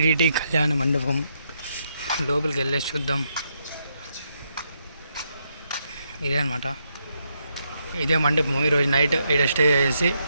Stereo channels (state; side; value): inverted; both; correlation -0.79